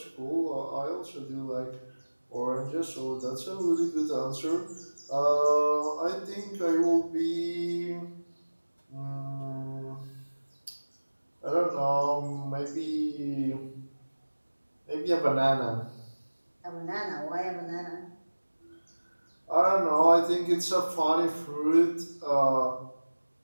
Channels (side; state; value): both; inverted; correlation -1.00